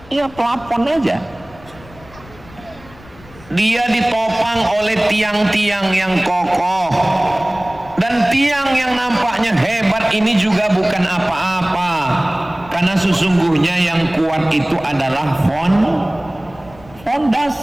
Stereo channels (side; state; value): left; noise; rumble, 22 dB below the sound